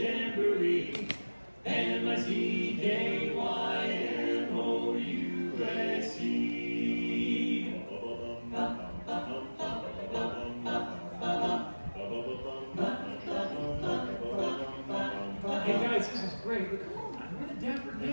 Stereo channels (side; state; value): both; inverted; correlation -1.00